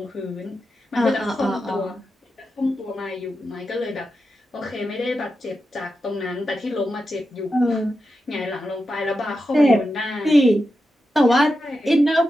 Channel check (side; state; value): both; normal; correlation 0.89